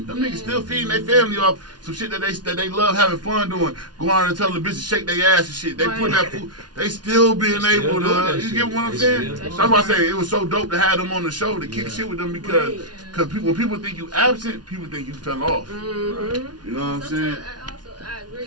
Them niggas still feeding their family off some shit that they love having fun doing. Go out and tell the bitches shake their ass and shit. They put that food. They still being able to. You get what I'm saying? That's why I say it was so dope to have them on the show to kick shit with them because when people think you absent, people think you fell off. Mm-hmm. You know what I'm saying? I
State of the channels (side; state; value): left; late; 0.69 ms